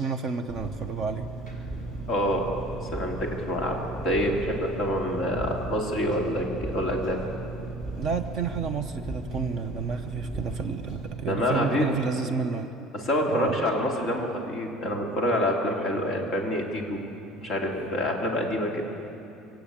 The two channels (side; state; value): both; normal; correlation 0.44